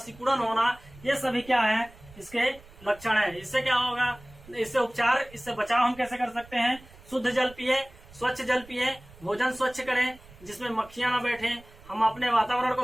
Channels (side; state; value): right; noise; rumble, 22 dB below the sound